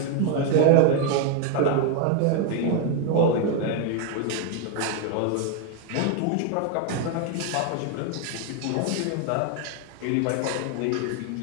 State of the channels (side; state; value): both; different; correlation 0.01